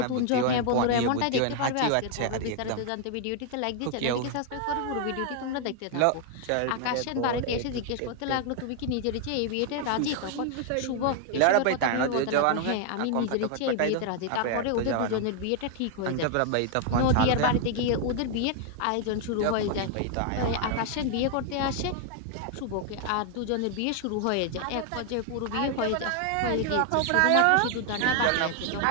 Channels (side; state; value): both; different; correlation 0.00